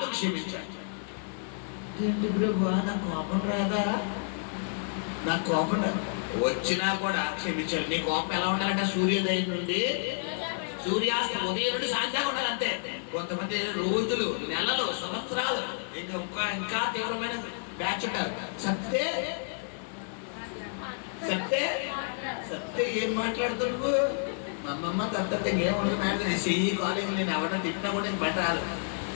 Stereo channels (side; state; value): right; silent; digital silence